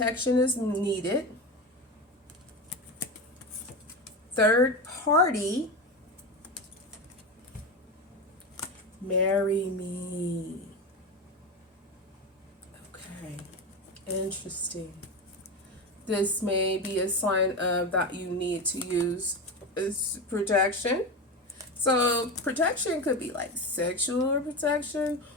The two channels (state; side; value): normal; both; correlation 0.20